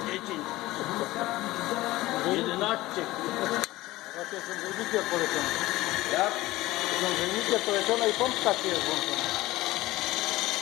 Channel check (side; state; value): right; quieter; 18.0 dB